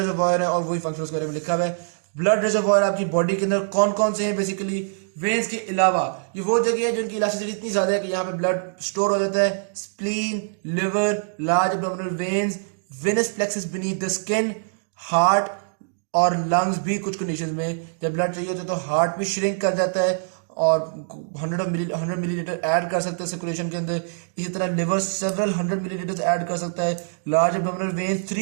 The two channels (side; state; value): left; silent; digital silence